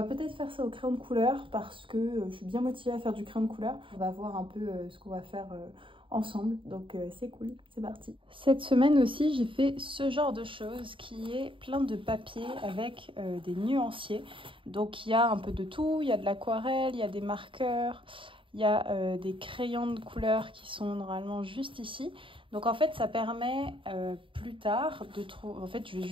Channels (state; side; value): late; left; 0.25 ms